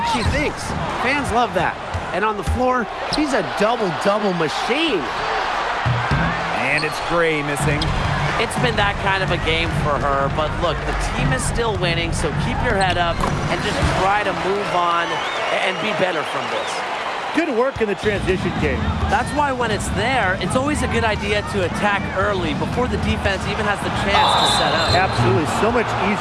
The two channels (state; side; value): identical; both; correlation 1.00